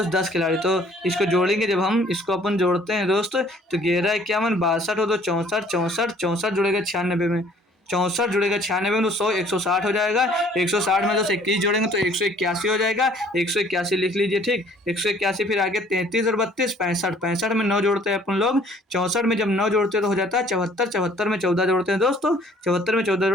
10 खिलाड़ी। तो इसको जोड़ेंगे, जब हम इसको अपन जोड़ते हैं दोस्त तो 11 51 62 और 2 64 64 64 जुड़ेगा 96 में, 64 जुड़ेगा 96 में तो 100 160 हो जाएगा। 160 में दोस्त 21 जोड़ेंगे तो 181 हो जाएगा। 181 लिख लीजिए, ठीक। 181 फिर आगे 33 और 32 65, 65 में 9 जोड़ते हैं अपन लोग। 64 में जब 9 जोड़ते हैं तो हो जाता है 74, 74 में 14 जोड़ते हैं दोस्तों, 74 में 14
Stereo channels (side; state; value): both; normal; correlation 0.57